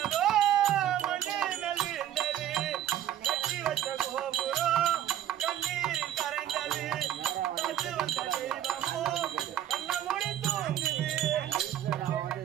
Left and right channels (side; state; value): left; quieter; 11.4 dB